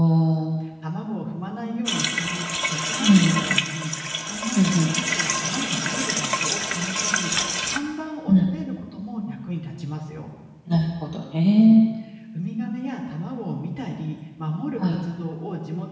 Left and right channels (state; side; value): identical; both; correlation 1.00